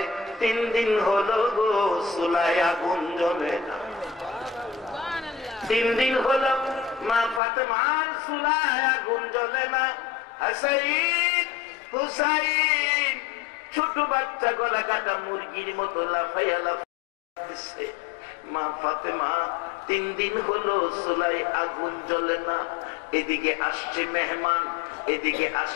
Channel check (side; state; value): right; drops out; at 7.4 s